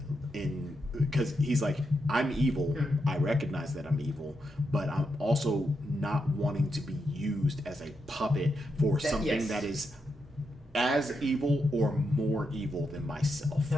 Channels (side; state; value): both; normal; correlation 0.84